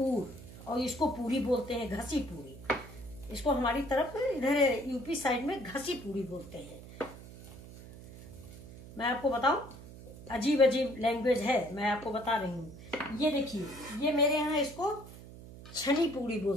और इसको पूरी बोलते हैं, घसी पूरी। इसको हमारी तरफ इधर यूपी साइड में घसी पूरी बोलते हैं। मैं आपको बताऊं, अजीब अजीब लैंग्वेज है, मैं आपको बता रही हूँ। ये देखिए, ये मेरे यहाँ इसको छनी पूरी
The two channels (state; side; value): noise; right; hum, 16 dB below the sound